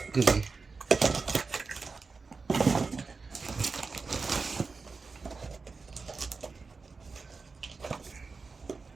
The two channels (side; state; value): left; quieter; 4.4 dB